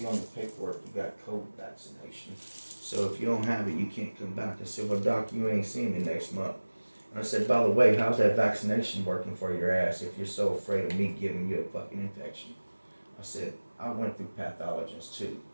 on the paperwork you got COVID vaccination. So if you don't have it, you can't come back. I said, well, Doc, you ain't seeing me next month. And I said, by the way, how's that vaccination working for your ass if you're so afraid of me giving you a fucking infection? I said, I went through pathologists too,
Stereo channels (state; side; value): inverted; both; correlation -1.00